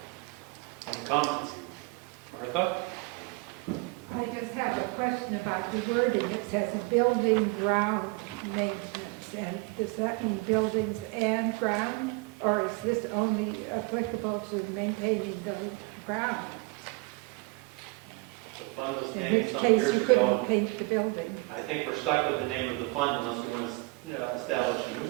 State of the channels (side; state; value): left; quieter; 26.5 dB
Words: Any comments? Martha? I just have a question about the wording. It says building ground maintenance, and does that mean buildings and ground? Or is this only applicable to maintaining the ground? The fund was In named which some case years you ago. couldn't paint the building. I think we're stuck with the name of the fund unless we want to establish a new